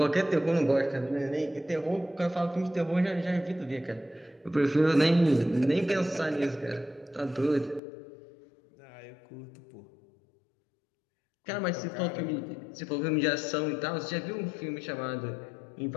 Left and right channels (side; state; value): right; drops out; at 7.8 s